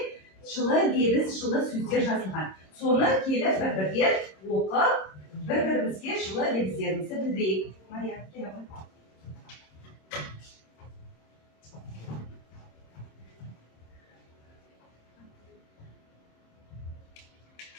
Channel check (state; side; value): late; right; 26 ms